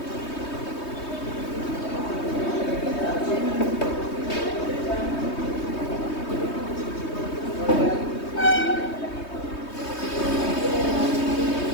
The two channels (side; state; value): right; late; 3.2 ms